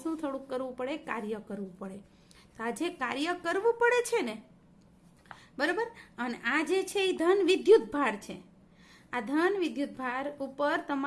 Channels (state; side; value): identical; both; correlation 1.00